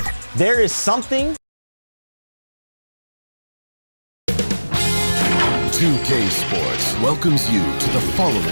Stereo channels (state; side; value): inverted; both; correlation -1.00